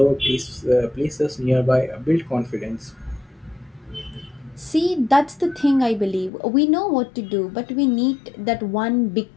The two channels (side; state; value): right; drops out; at 6.3 s